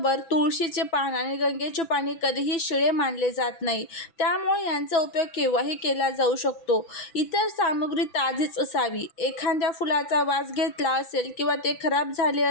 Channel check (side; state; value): right; late; 6.0 ms